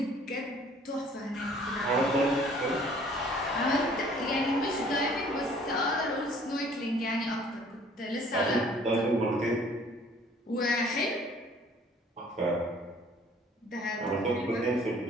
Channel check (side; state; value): both; normal; correlation 0.55